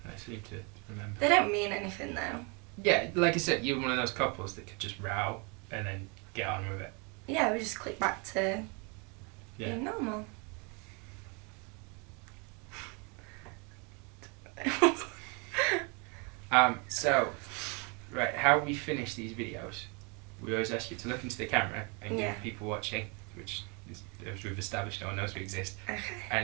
seem to remember. they don't mean anything though. Yeah, like I said, you're one of those couples that could just row and then get on with it. Yeah, we just click back to being normal. So, right, how we finish these videos, we always ask you to look into the camera and give people watching, which is, as we've established, no one knows we exist, Okay.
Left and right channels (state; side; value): quieter; left; 32.4 dB